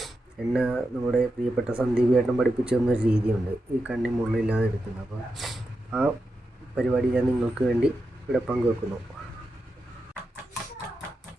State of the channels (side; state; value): both; normal; correlation 0.88